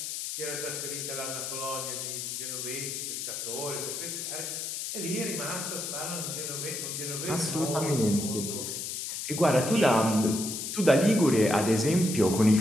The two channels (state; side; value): noise; left; hiss, 5 dB below the sound